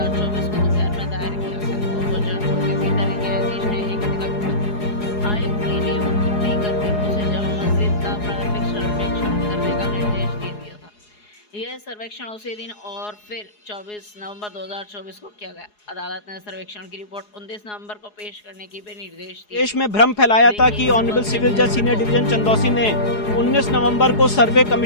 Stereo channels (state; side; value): late; right; 4.8 ms